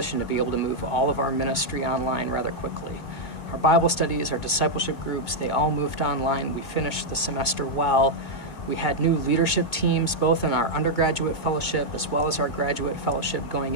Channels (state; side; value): late; right; 2.0 ms